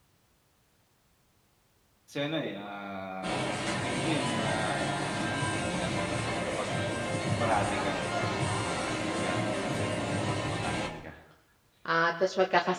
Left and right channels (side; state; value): both; identical; correlation 1.00